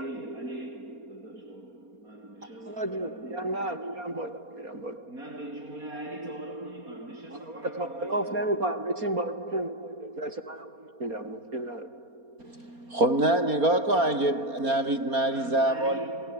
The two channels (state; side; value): late; left; 4.3 ms